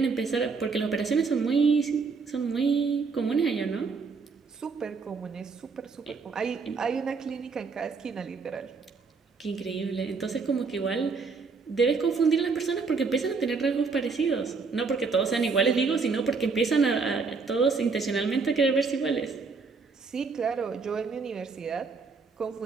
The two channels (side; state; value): left; quieter; 4.7 dB